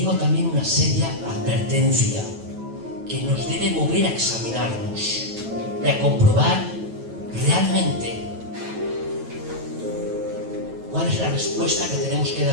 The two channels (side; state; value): left; late; 9.2 ms